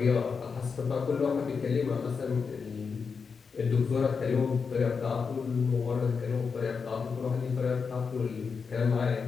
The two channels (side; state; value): right; quieter; 5.5 dB